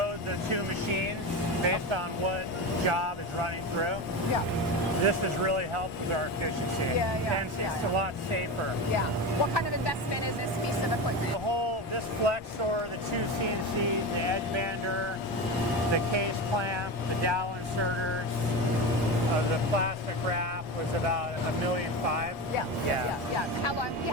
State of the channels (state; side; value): normal; both; correlation 0.22